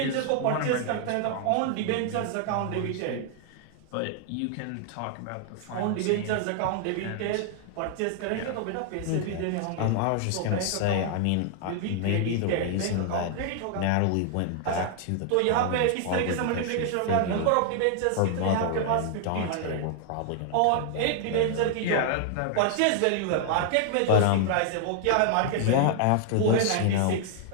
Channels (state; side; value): different; both; correlation 0.00